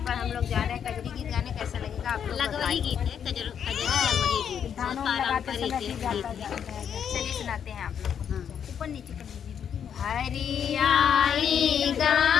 पर हम लोग जा रहे हैं कजरी गीत गाने। कैसा लगेगा आप लोग लगवही गीत है, कजरी लगवही गीत, धानों बहुत लगाते समय पारंपरिक भी गीत गाता है। जाता है। चलिए सुनाते हैं आप लोग को। हाँ। ऊपर नीचे कर दीजिए। हरियाई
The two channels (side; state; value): right; quieter; 8.2 dB